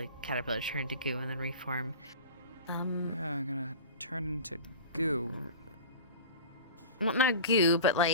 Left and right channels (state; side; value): inverted; both; correlation -0.35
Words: caterpillars turn into goo and then reform. Yeah, I'm gonna turn into goo. Well, not goo, but